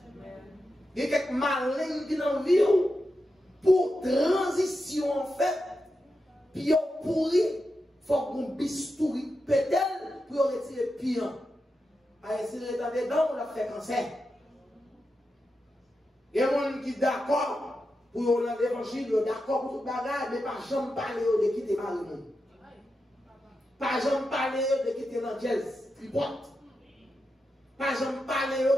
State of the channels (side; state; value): both; normal; correlation 0.88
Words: Il y a quelques malins qui dans la vie pour transition en fait, puis on pourri, il faut qu'on bistouri peut-être pour retirer pire. À essayer d'être dedans, on l'a fait cancer. Il y a des gens qui sont d'accord pour l'évangile, d'accord pour tout bagage, mais pas jamais parler de quitter Marie. Pas jamais parler de quitter l'anglaise, tripote. Pas jamais parler